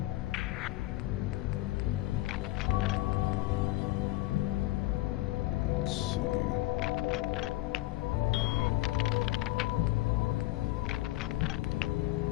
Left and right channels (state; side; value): quieter; right; 17.8 dB